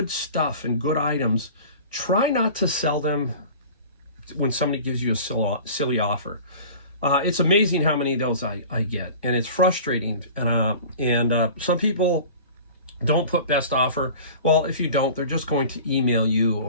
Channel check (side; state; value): both; inverted; correlation -0.40